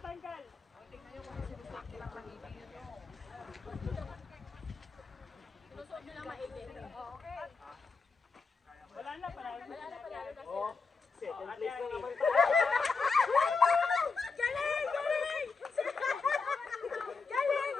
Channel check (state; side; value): quieter; right; 4.6 dB